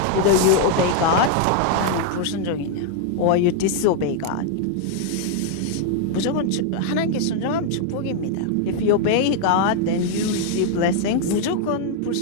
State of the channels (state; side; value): different; both; correlation 0.00